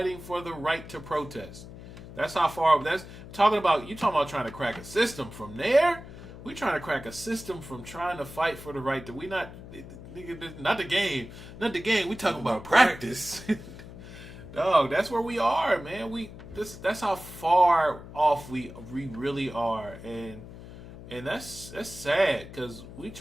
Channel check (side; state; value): left; noise; hum, 15 dB below the sound